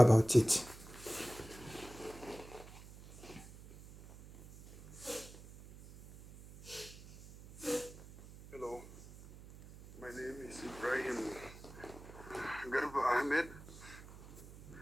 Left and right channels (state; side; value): noise; right; hum, 17 dB below the sound